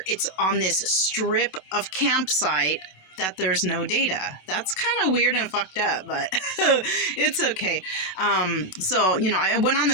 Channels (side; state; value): right; late; 27 ms